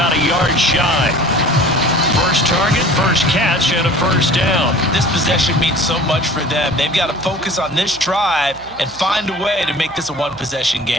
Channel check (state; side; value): noise; right; hum, 22 dB below the sound